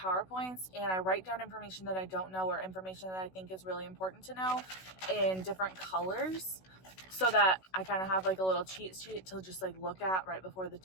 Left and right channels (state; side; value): late; right; 16 ms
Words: and I write down information that I don't know or information that I think is really important to know in different colors so that I kind of have like a little cheat sheet to just like look at right before the